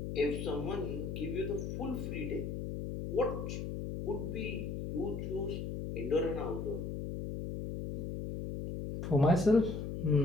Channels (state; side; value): noise; left; hum, 4 dB below the sound